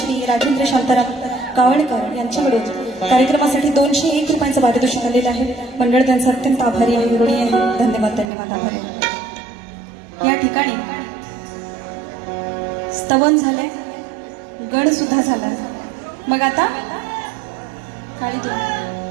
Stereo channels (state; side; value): drops out; left; at 8.2 s